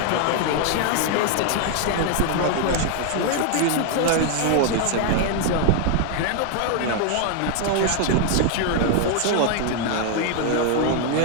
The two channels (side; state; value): both; different; correlation 0.00